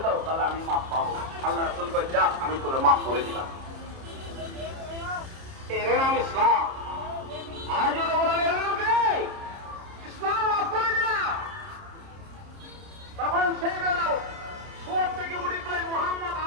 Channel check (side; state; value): left; late; 30 ms